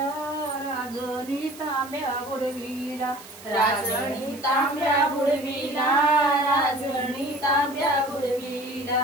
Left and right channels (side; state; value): right; noise; hiss, 19 dB below the sound